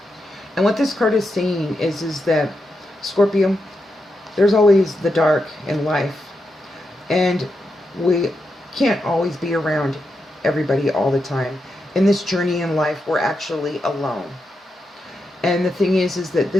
And what this card is saying is that, Scorpio, there's always the dark in life. And we can't always be around everybody all the time. In this journey in life, we're actually alone. And the thing is that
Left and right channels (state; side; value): normal; both; correlation 0.86